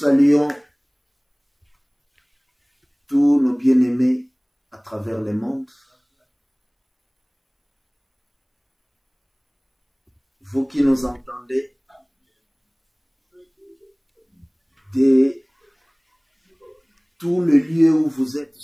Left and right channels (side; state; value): both; identical; correlation 1.00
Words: tous nos bien-aimés à travers le monde. Vous qui nous entendez de tout le lieu où vous êtes